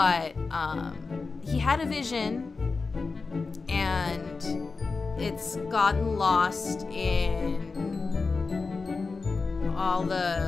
he had a vision, and it's gotten lost in all the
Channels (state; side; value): quieter; right; 4.2 dB